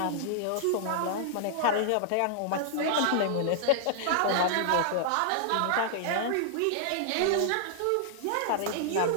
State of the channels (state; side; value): different; both; correlation -0.01